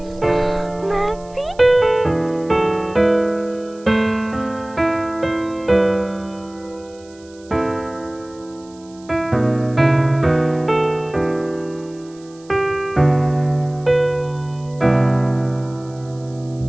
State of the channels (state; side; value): noise; right; hiss, 27 dB below the sound